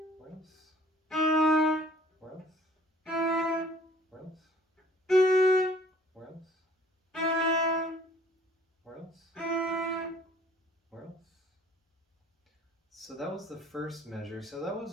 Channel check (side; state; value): both; normal; correlation 0.55